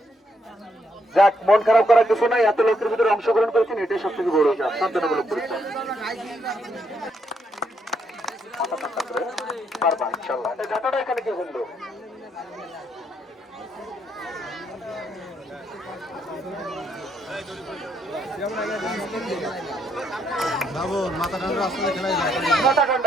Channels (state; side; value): normal; both; correlation 0.74